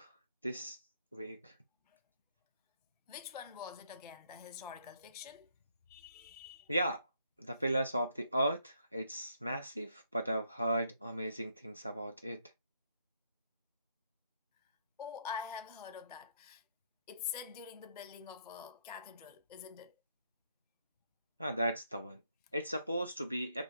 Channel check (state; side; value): inverted; both; correlation -0.73